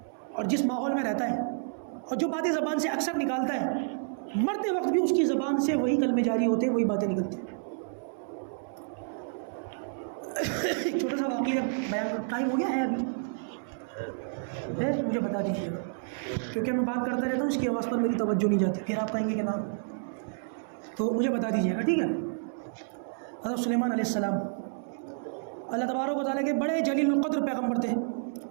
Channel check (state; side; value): silent; left; 58 dB below the other